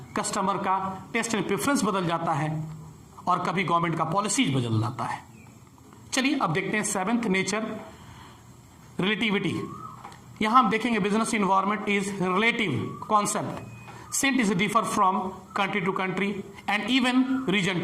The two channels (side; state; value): both; identical; correlation 1.00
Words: कस्टमर का टेस्ट एंड प्रेफरेंस बदल जाता है और कभी गवर्नमेंट का पॉलिसीज बदल जाता है. चलिए अब देखते हैं सेवेंथ नेचर, रिलेटिविटी. यहां हम देखेंगे business environment is relative concept since is differ from country to country and even region